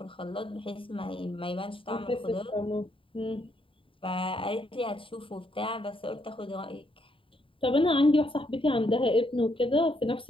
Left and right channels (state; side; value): late; right; 0.25 ms